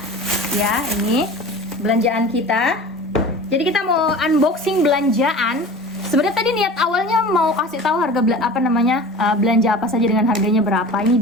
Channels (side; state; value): both; normal; correlation 0.37